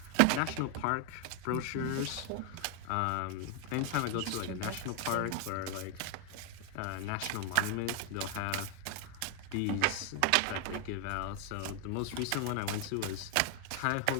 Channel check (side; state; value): both; different; correlation 0.00